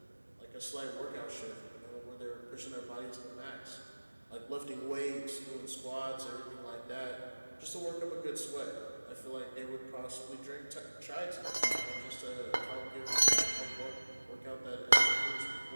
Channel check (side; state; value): both; inverted; correlation -1.00